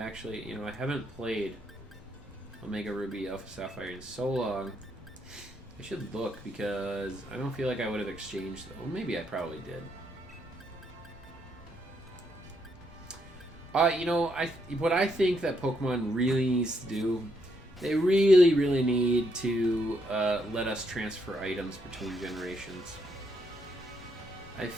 I haven't played Omega Ruby Alpha Sapphire in so long. I should look because I don't feel like I would have exchanged them. Well, maybe I probably did. What I think that Pokemon really needs to do, they really, really need to let us transfer items between generations. I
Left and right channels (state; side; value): normal; both; correlation 0.76